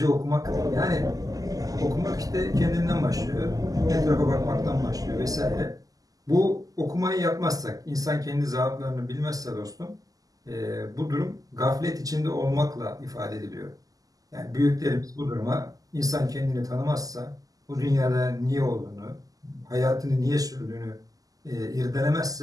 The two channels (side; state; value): left; late; 0.17 ms